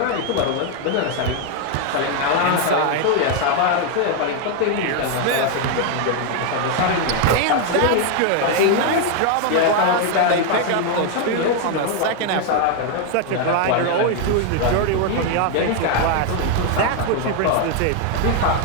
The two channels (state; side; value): different; both; correlation 0.01